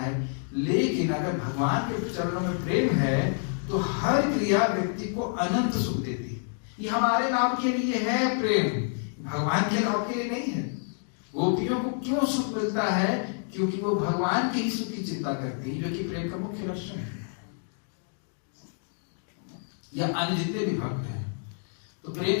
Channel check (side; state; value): right; silent; 59 dB below the other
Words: लेकिन अगर भगवान के चरणों में प्रेम है तो हर क्रिया व्यक्ति को अनंत सुख देती है। ये हमारे नाम के लिए है प्रेम, भगवान के नाम के लिए नहीं है। गोपियों को क्यों सुख मिलता है? क्योंकि वो भगवान के ही सुख की चिंता करती है, जो कि प्रेम का मुख्य लक्षण है। या अन्य जितने भी भक्त हैं, तो प्रेम